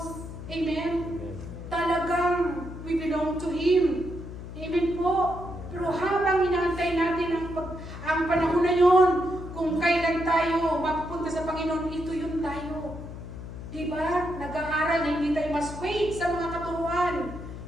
Amen? Amen. Talagang we belong to Him. Amen po. Pero habang inaantay natin ang panahon na yun, kung kailan tayo mapupunta sa Panginoon, ito yun tayo. Diba? Nag-aaral na hindi tayo mas wait sa mga katuruan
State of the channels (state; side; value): noise; left; hum, 10 dB below the sound